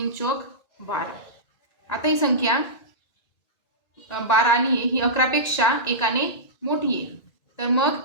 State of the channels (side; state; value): right; late; 2.0 ms